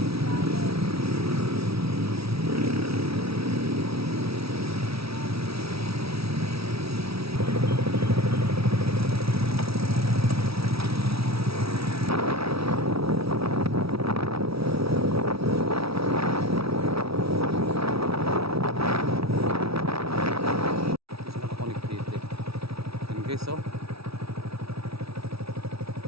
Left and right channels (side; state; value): left; late; 0.76 ms